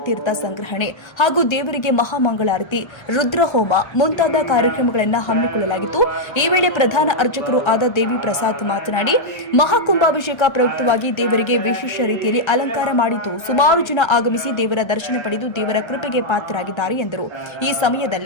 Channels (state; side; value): late; right; 1.3 ms